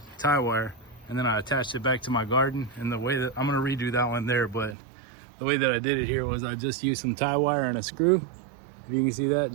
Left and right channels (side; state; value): left; drops out; at 4.8 s